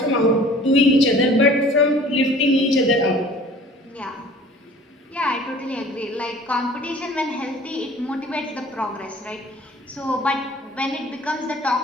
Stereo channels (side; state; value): both; normal; correlation 0.49